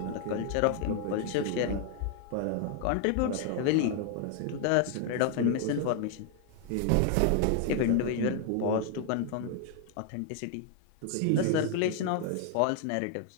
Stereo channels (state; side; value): different; both; correlation 0.00